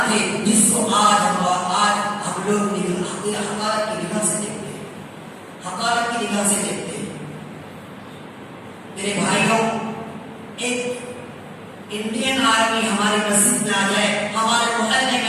تھے جس کو آج ہم لوگ حقارت کی نگاہ سے دیکھتے ہیں، حقارت کی نگاہ سے دیکھتے ہیں۔ میرے بھائیوں، ایک انڈین آرمی ہماری مسجد میں آ جائے، ہمارے محلے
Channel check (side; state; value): both; identical; correlation 1.00